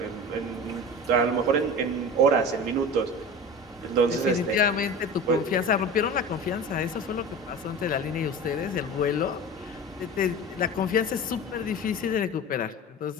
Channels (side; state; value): both; normal; correlation 0.33